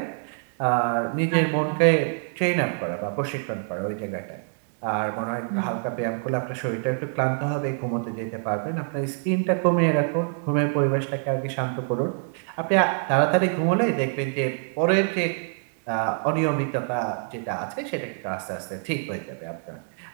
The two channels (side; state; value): left; silent; 61 dB below the other